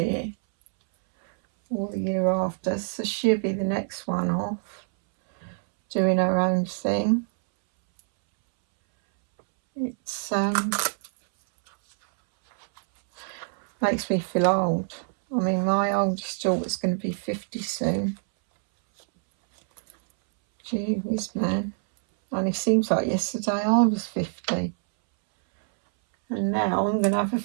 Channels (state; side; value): silent; left; 61 dB below the other